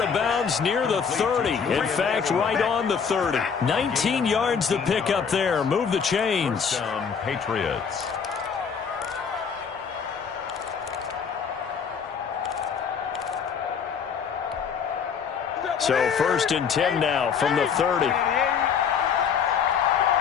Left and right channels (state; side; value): quieter; right; 6.6 dB